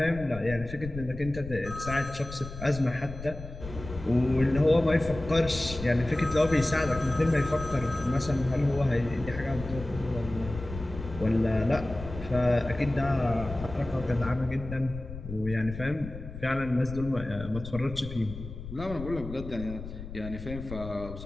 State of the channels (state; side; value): noise; left; rumble, 11 dB below the sound